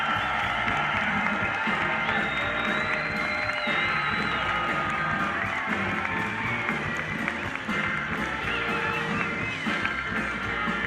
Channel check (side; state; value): both; identical; correlation 1.00